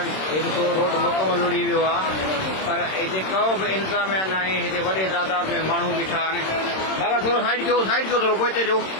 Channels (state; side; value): late; right; 26 ms